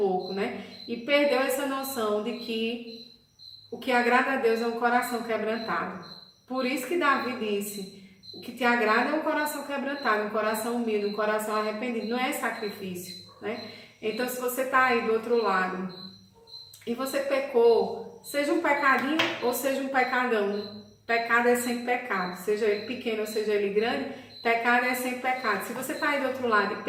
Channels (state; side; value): identical; both; correlation 1.00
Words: né, e perdeu essa noção de que o que agrada a Deus é um coração quebrantado. Por isso que Davi disse, o que te agrada é um coração quebrantado, um coração humilde, um coração arrependido, não é sacrifício, né? Então, se você está aí do outro lado e você pecou, seja um pecadinho ou seja um pecadão, pecado é sempre pecado, seja ele pequeno ou seja ele grande, pecado é sempre pecado. Se você está aí do outro lado e